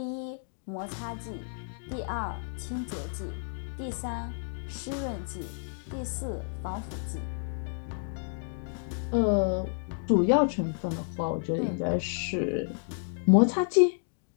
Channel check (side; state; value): right; silent; digital silence